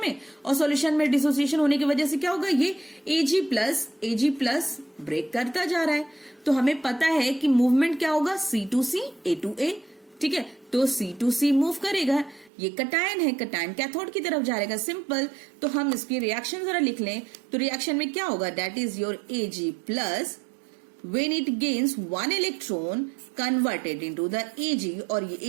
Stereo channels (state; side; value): drops out; left; at 12.5 s